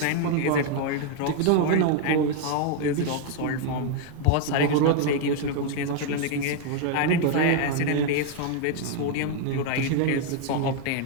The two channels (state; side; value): different; both; correlation 0.00